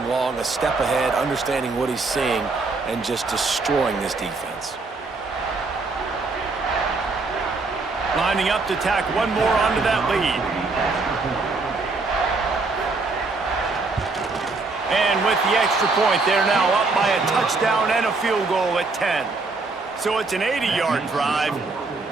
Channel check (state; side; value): quieter; left; 3.8 dB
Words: long, a step ahead, understanding what he's seeing, and just destroying this defense. Lining up to tack one more onto that lead. And with the extra point, they're now up by a touchdown and a field goal at 10. So it's an 80-yard drive,